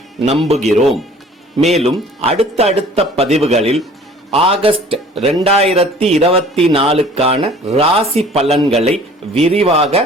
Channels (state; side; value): normal; both; correlation 0.50